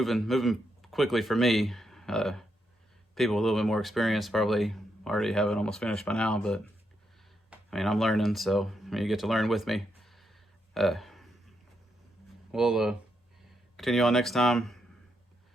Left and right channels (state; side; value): normal; both; correlation 0.81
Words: quickly for me. People with a little bit more experience probably already have it almost finished by now, but I mean, I'm learning, so you get to learn with me. We'll continue on next time,